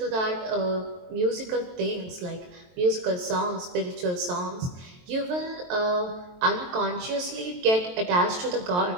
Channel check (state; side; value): late; left; 23 ms